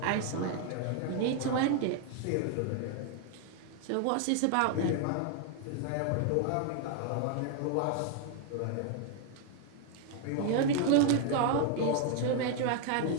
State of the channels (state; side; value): different; both; correlation 0.00